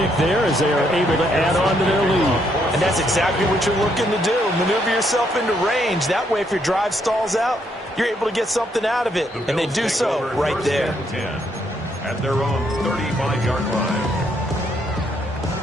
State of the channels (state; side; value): normal; both; correlation 0.73